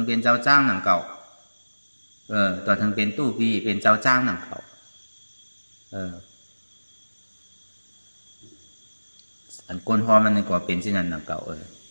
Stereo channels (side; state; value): both; inverted; correlation -1.00